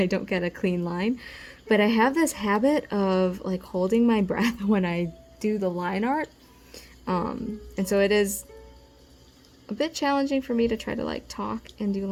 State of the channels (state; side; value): identical; both; correlation 1.00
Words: don't get a clean line. But I have this habit of like holding my breath when I do the line art, and so it is a bit challenging for me to try to like talk and do